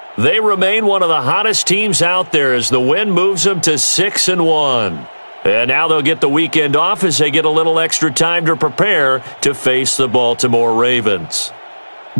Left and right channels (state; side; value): inverted; both; correlation -1.00